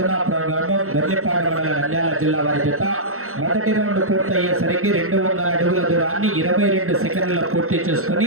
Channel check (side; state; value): left; late; 0.63 ms